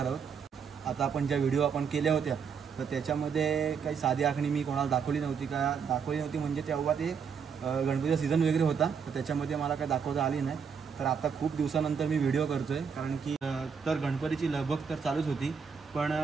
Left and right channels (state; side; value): quieter; left; 6.4 dB